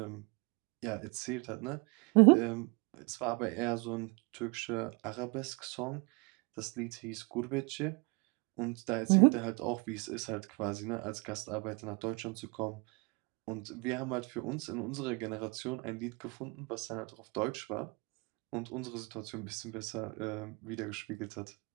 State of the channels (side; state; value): left; quieter; 28.8 dB